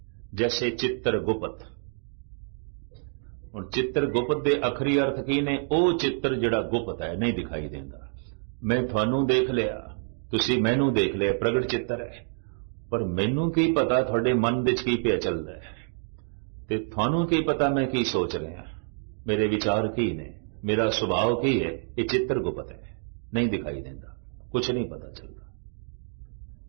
जैसे चित्रगुप्त। हुण चित्रगुप्त दे अखरी अर्थ की ने? वो चित्र जिहड़ा गुप्त है, नहीं दिखाई देंदा। मैं थानू देख लिया, तुसी मैनू देख लिया, प्रगट चित्र है, पर मैनू की पता थोड़े मन विच की पिया चलदा है, ते थानू की पता मैं की सोच रहा, मेरे विचार की ने, मेरा स्वभाव की है। ये चित्रगुप्त है, नहीं दिखाई देता, कुछ नहीं पता चलता।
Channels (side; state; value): left; silent; 60 dB below the other